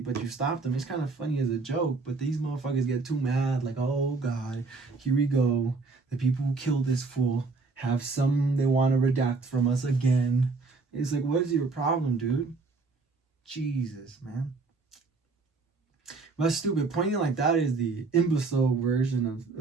you stopped him. It's kind of funny as a joke, but these motherfuckers get too mad, like, oh God, here we go. The people who killed this fool have some they want to redact from us again. It's like, what is your problem, dude? Jesus, man. That's stupid. Pointing like that is the imbecile version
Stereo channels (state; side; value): quieter; left; 4.0 dB